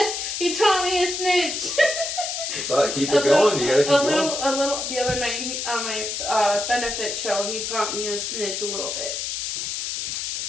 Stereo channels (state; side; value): noise; left; hiss, 3 dB below the sound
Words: He taught me a snitch. It's like, keep it going, you gotta keep going. A little, the other night on my benefit show, he taught me a snitch a little bit.